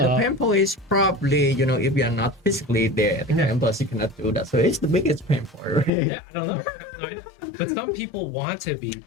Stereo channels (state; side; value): drops out; right; at 5.9 s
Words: pain point is probably, if you are not physically there at the campus, you cannot do that. So it's the biggest pain point, right? Yeah, I don't know. But some people want to be